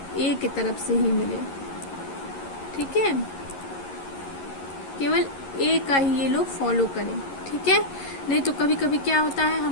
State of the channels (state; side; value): late; right; 11 ms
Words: ए की तरफ से ही मिले। ठीक है, केवल ए का ही ये लोग फॉलो करें, ठीक है। नहीं तो कभी कभी क्या होता है